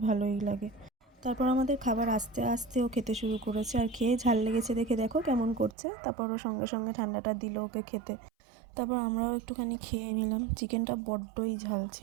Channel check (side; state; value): left; drops out; at 5.8 s